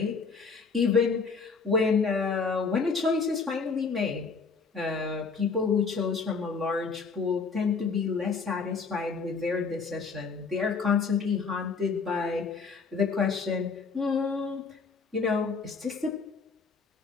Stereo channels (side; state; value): right; quieter; 4.9 dB